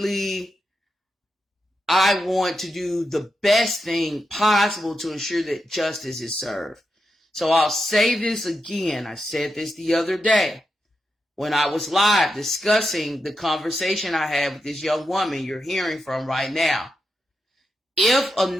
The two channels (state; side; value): normal; both; correlation 0.87